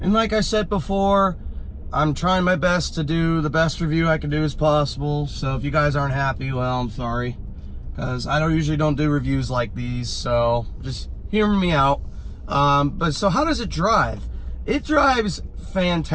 like I said before, I'm trying my best to do the best review I can do as possible. So if you guys aren't happy, well, I'm sorry, because I usually don't do reviews like these, so just hear me out. But so how does it drive? It drives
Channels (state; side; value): identical; both; correlation 1.00